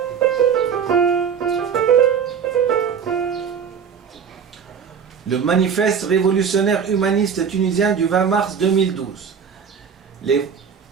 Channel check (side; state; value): left; quieter; 7.0 dB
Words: Le manifeste révolutionnaire humaniste tunisien du 20 mars 2012.